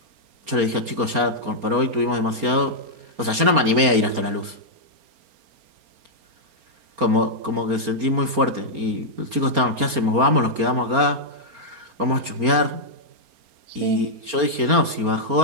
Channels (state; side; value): late; left; 4.3 ms